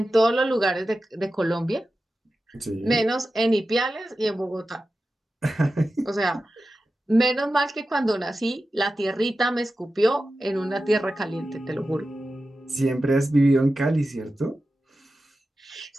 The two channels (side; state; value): both; normal; correlation 0.93